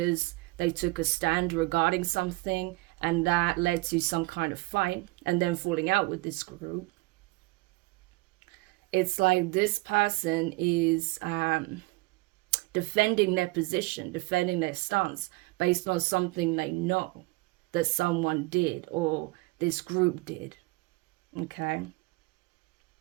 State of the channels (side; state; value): left; quieter; 23.8 dB